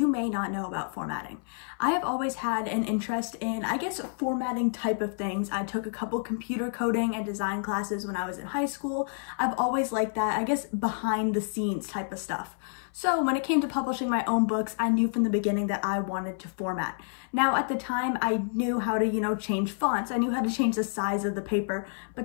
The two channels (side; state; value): right; silent; 58 dB below the other